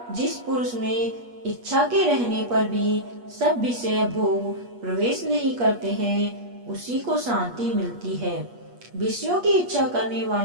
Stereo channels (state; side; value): late; left; 8.3 ms